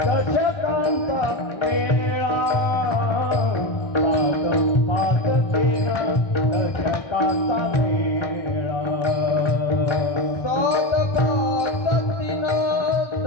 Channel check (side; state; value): right; late; 1.6 ms